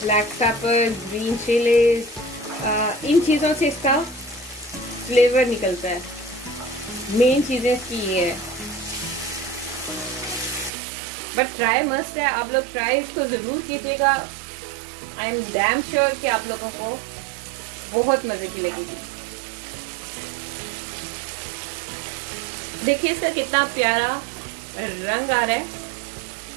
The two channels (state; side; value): drops out; left; at 10.7 s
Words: ब्लैक पेपर, ग्रीन चिलीज, इन चीज़ों से इसका फ्लेवर निकलता है। मेन चीज़ें इसकी ये है, बट ट्राई मस्ट है। आप लोग ट्राई इसको ज़रूर कीजिएगा। आई एम डैम श्योर कि आप लोगों को बहुत मज़े की लगेगी। देखिए इसका कितना प्यारा रंग आ रहा है